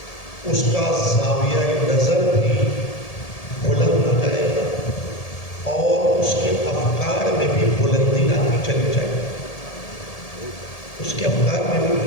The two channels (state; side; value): late; right; 1.7 ms